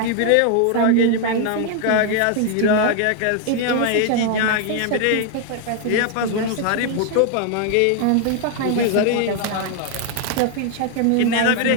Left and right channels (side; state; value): both; different; correlation 0.00